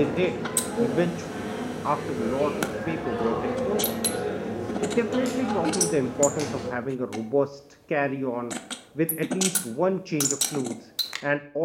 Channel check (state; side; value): identical; both; correlation 1.00